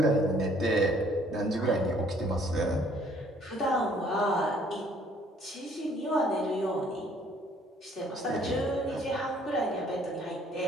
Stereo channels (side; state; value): both; normal; correlation 0.61